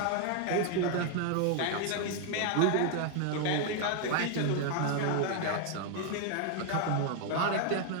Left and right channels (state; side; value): different; both; correlation 0.00